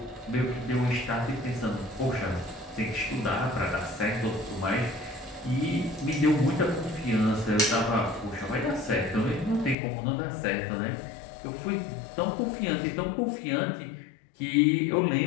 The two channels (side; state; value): right; drops out; at 9.8 s